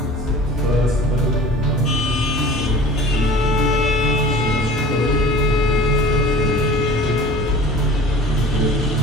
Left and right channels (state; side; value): normal; both; correlation 0.42